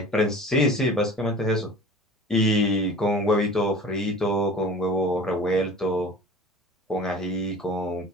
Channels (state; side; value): normal; both; correlation 0.41